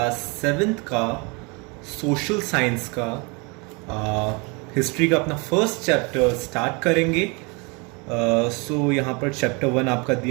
7th का सोशल साइंस का हिस्ट्री का अपना फर्स्ट चैप्टर स्टार्ट करेंगे. सो यहाँ पर चैप्टर 1 आपका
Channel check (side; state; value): left; quieter; 30.4 dB